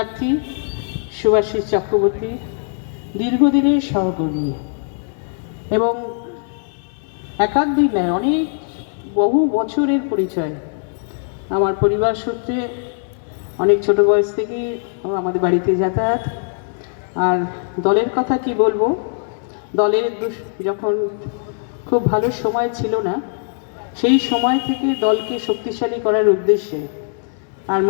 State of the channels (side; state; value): right; silent; digital silence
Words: শুভাশিস চক্রবর্তী দীর্ঘদিনের সহকর্মী এবং একাধ দিন নয়, অনেক বহু বছরের পরিচয়। আমার পরিবার সূত্রে অনেক ছোট বয়স থেকেই আমাদের বাড়িতে যাতায়াত। আর দলের কথা কি বলবো, দলের যখন খুব ভালো সময় ছিল না, সেই সময় থেকে দলকে শক্তিশালী করার উদ্দেশ্যে আর